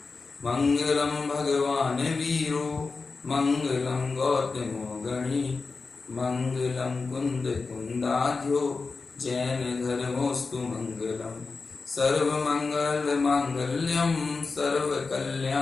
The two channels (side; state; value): right; quieter; 4.2 dB